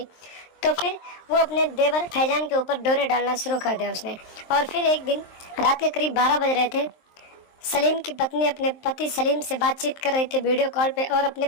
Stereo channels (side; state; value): right; late; 23 ms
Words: तो फिर वो अपने देवर फैजान के ऊपर डोरे डालना शुरू कर दिया उसने। और फिर एक दिन रात के करीब 12 बज रहे थे। सलीम की पत्नी अपने पति सलीम से बातचीत कर रही थी वीडियो कॉल पे और अपने